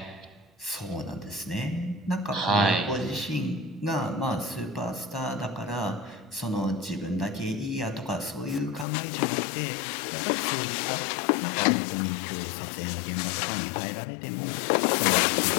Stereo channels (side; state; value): right; drops out; at 8.8 s